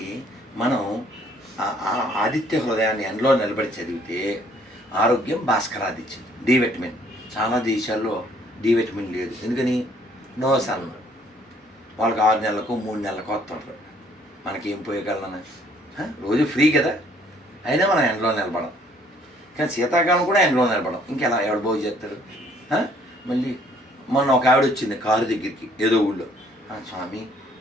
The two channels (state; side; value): normal; both; correlation 0.62